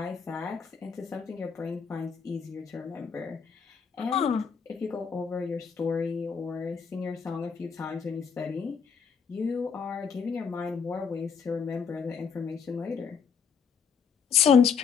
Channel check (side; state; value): right; quieter; 6.3 dB